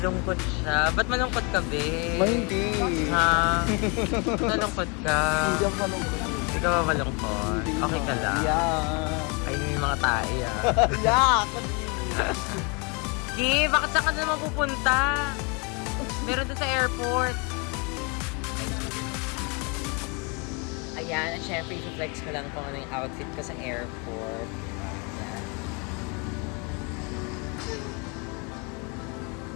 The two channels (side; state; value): right; quieter; 32.2 dB